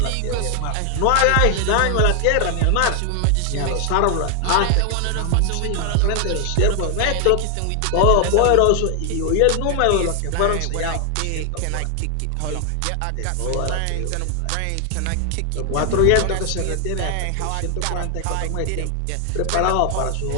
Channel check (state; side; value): different; both; correlation 0.00